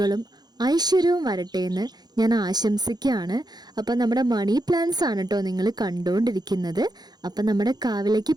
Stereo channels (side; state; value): left; late; 0.20 ms